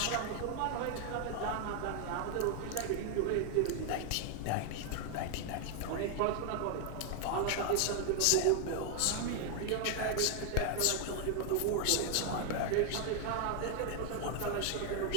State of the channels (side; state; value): both; different; correlation 0.00